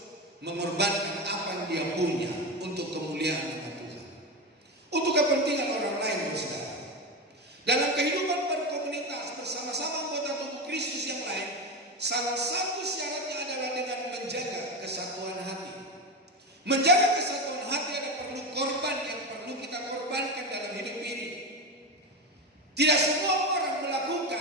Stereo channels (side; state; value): both; normal; correlation 0.18